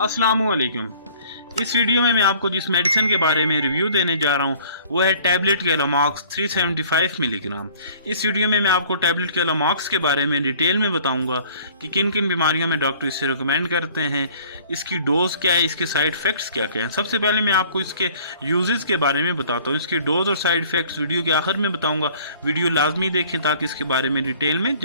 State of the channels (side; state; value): both; inverted; correlation -0.53